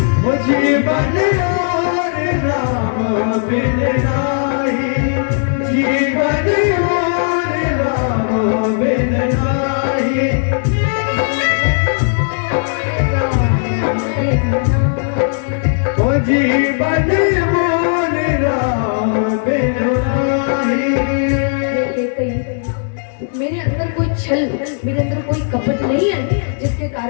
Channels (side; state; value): right; silent; digital silence